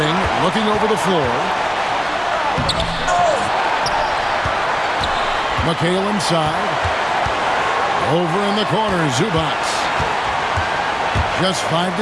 looking over the floor. McHale inside. Over in the corner, Zubac. Just 5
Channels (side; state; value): both; identical; correlation 1.00